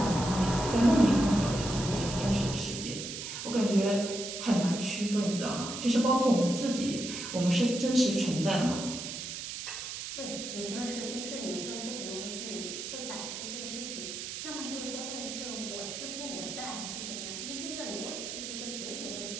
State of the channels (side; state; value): right; noise; hiss, 7 dB below the sound